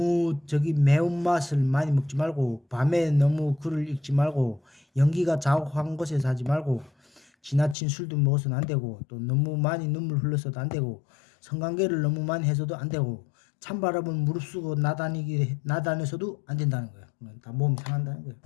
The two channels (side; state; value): right; drops out; at 7.8 s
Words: 매운맛을 많이 먹지 말고 밤에 너무 글을 읽지 말고 연기가 자욱한 곳에서 하지 말고 지나친 술도 먹어서는 안 되고 또 너무 많이 눈물 흘려서도 안 되고 성관계를 너무 많이 해서도 안 되고 찬바람을 무릅쓰고 나다녀서도 안 된다는 거예요. 다 몸이 상한다는 거예요.